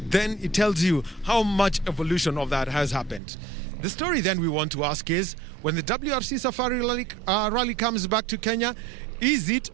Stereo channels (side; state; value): left; drops out; at 3.2 s